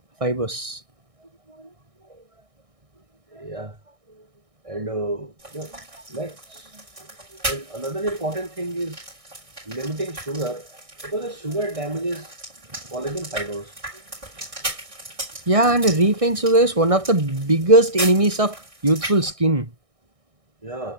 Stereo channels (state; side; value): late; left; 1.6 ms